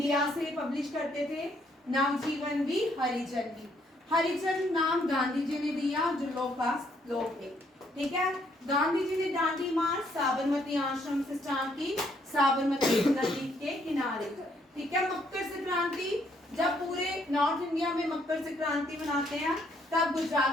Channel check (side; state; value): both; normal; correlation 0.70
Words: से पब्लिश करते थे। नवजीवन भी, हरिजन भी। हरिजन नाम गांधी जी ने दिया जो लो कास्ट लोग थे, ठीक है। गांधी जी ने दांडी मार्च साबरमती आश्रम से स्टार्ट की, साबरमती नदी के किनारे, ठीक है। मकर संक्रांति, जब पूरे नॉर्थ इंडिया में मकर संक्रांति मनाते हैं तब